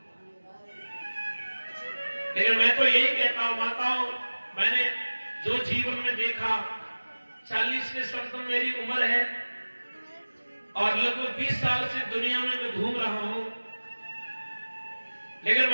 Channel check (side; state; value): both; inverted; correlation -1.00